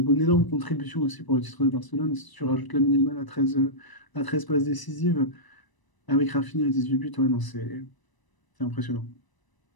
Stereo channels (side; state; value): right; late; 1.0 ms